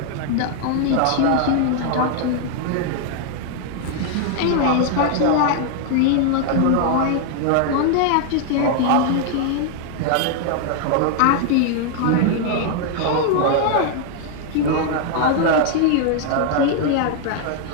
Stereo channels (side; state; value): both; different; correlation 0.00